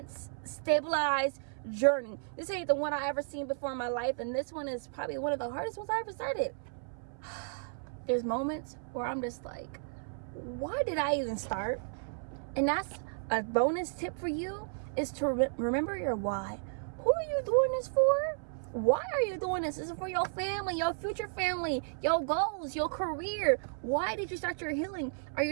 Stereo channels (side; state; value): left; silent; 56 dB below the other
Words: stabilized journey. This ain't the one I ever seen before in my life, and this one is probably one of the hardest ones I ever started. There's moments where I'm just like, why did I even start? And that's a bonus tip for you, is to remember your why. Who are you doing this for? Why are you doing this? This is for your family, your future family, your goals, your career. Why did you start your healing? Are